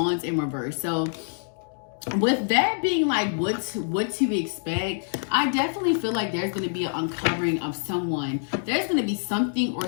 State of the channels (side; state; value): right; silent; digital silence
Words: in reverse. So with that being like what to expect, I definitely feel like there's going to be an uncovering of someone. There's going to be something or